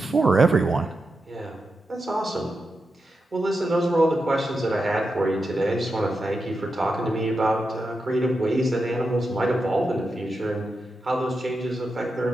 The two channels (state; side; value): normal; both; correlation 0.88